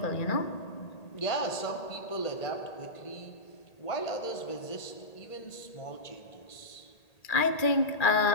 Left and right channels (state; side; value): late; right; 1.8 ms